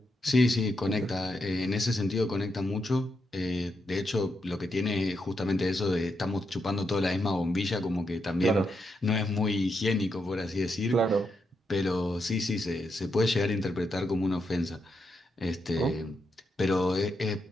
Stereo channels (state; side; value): normal; both; correlation 0.83